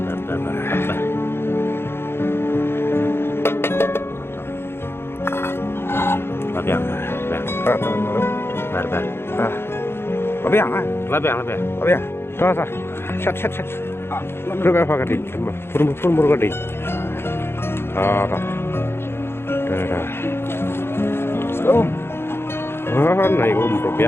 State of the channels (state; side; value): late; right; 0.11 ms